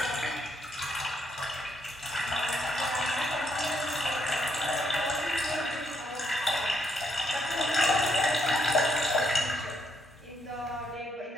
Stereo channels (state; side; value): normal; both; correlation 0.75